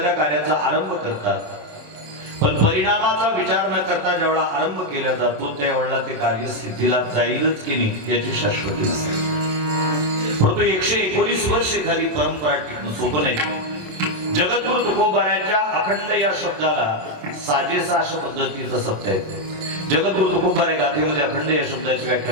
कार्याचा आरंभ करतात, पण परिणामाचा विचार न करता जेवढा आरंभ केला जातो त्यावेळेला ते कार्य सिद्धीला जाईलच की नाही याची शाश्वती नसते। परंतु 119 वर्ष एखादी परंपरा टिकणं सोपं नाही। जगद्गुरु तुकोबारायांच्या अखंड या शब्दाला साजेसा अशा पद्धतीचा शब्द आहे। जगद्गुरु तुकोबाराय गाथेमध्ये अखंड या शब्दाची व्याख्या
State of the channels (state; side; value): late; left; 27 ms